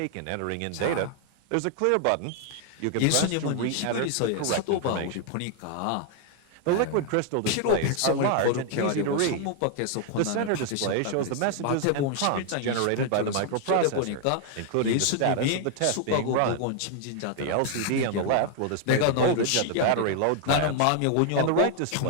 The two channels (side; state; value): both; different; correlation 0.00